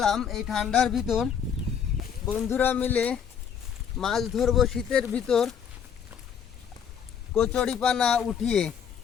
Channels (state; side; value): quieter; right; 7.7 dB